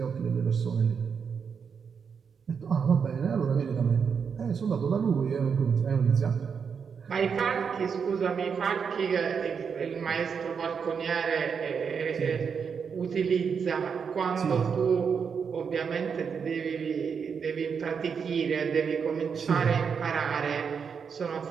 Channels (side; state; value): left; quieter; 6.4 dB